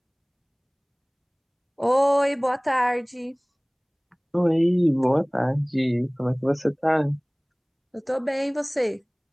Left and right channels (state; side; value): identical; both; correlation 1.00